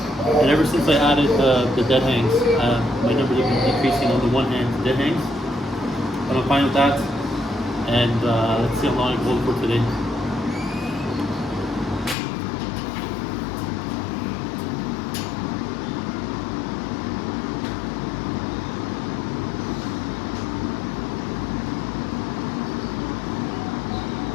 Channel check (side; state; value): right; drops out; at 12.2 s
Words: And ever since I added the dead hangs, my numbers have been decreasing on the one hand dead hangs. But I'm fine with that. And let's see how long I can hold for today.